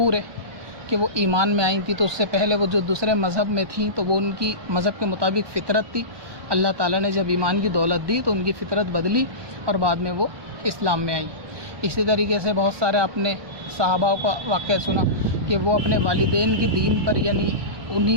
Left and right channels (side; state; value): left; late; 1.1 ms